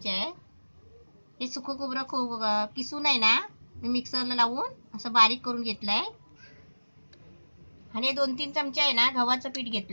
आहे. हे सुकं खोबरं किसून आहे ना, मी मिक्सरला लावून असं बारीक करून घेतलंय. आणि 2-3 चमचे आहे ना गव्हाचं पीठ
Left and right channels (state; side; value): inverted; both; correlation -1.00